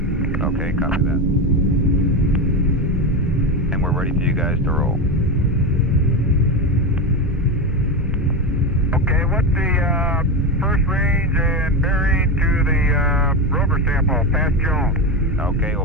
Okay, copy that. And we're ready for you guys to roll. Okay, what's the first range and bearing to the rover sample, past Jones? Okay, it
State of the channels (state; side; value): normal; both; correlation 0.16